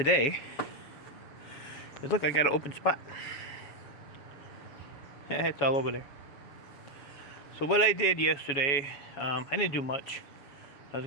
is, look, I got an open spot. Yeah, it's all over there. So what I did yesterday, I didn't do much. I was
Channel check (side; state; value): right; late; 7.1 ms